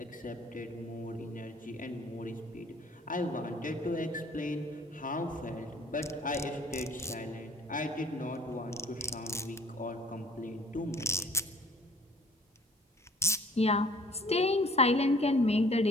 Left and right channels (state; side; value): normal; both; correlation 0.53